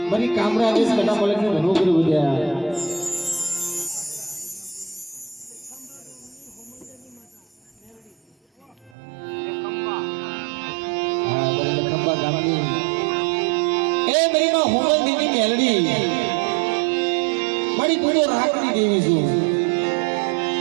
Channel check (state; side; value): drops out; left; at 8.9 s